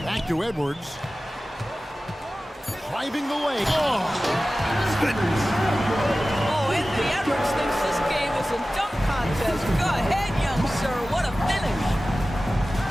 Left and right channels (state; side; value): normal; both; correlation 0.96